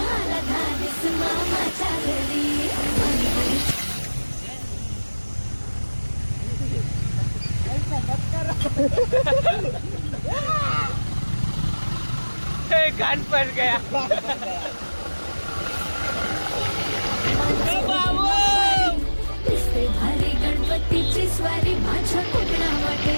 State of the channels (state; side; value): inverted; both; correlation -1.00